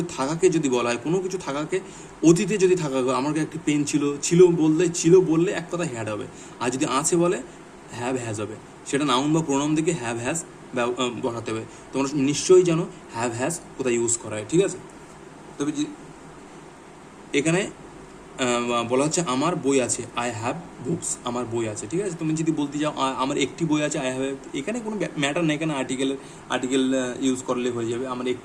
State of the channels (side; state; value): both; identical; correlation 1.00